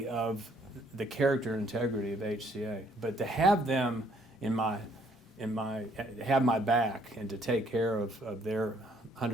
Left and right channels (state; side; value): normal; both; correlation 0.65